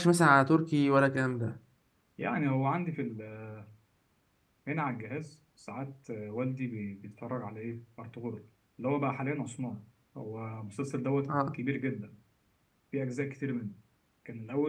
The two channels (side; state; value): both; identical; correlation 1.00